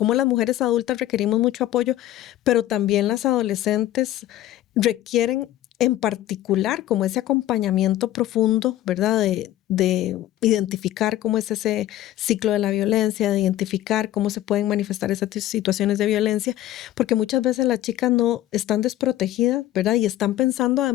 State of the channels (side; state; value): right; quieter; 13.8 dB